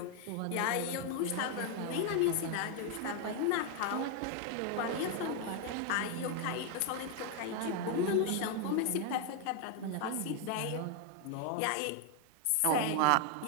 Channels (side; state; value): both; different; correlation 0.01